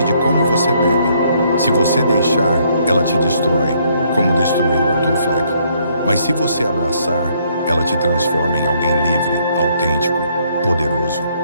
de como você bebe. Se você deixar, ela te destrói, como destruiu Arthur Fleck. Mas se você abraçar, ela te transforma em alguém livre, autêntico, poderoso.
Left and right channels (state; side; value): inverted; both; correlation -0.68